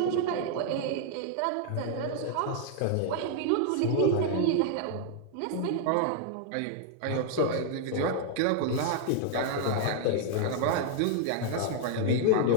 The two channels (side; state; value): both; different; correlation 0.00